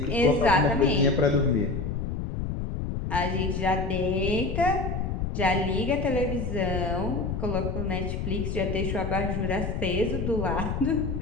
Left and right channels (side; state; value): left; noise; rumble, 3 dB below the sound